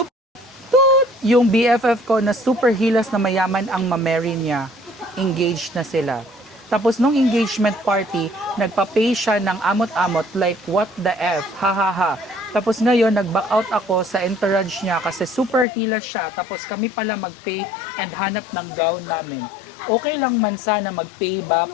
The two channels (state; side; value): drops out; right; at 15.7 s